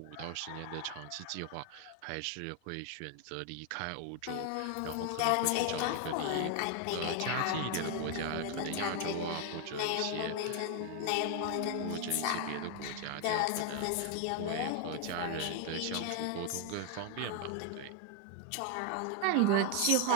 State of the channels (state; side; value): different; both; correlation 0.00